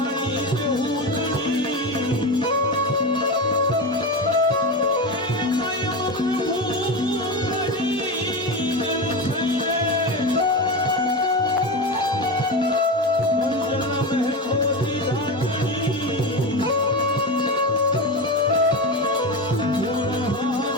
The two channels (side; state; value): both; normal; correlation 0.20